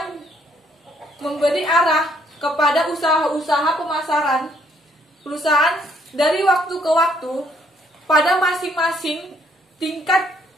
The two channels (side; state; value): both; normal; correlation 0.68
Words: memberi arah kepada usaha-usaha pemasaran perusahaan dari waktu ke waktu pada masing-masing tingkat